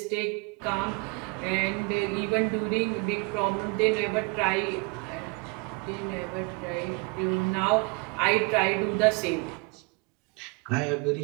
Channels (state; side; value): quieter; left; 29.2 dB